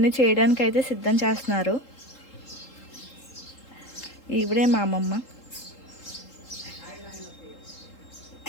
చేయడానికి అయితే సిద్ధం చేస్తున్నారు. ఇవిడే మా అమ్మమ్మ.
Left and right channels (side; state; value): right; late; 3.8 ms